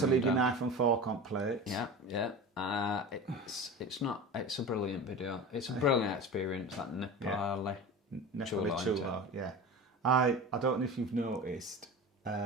leave your knife and fork on plates. Yeah. It's a brilliant video. It's a brilliant experience, that Nepali Chulo, yeah. I don't know if you've noticed,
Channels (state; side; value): normal; both; correlation 0.31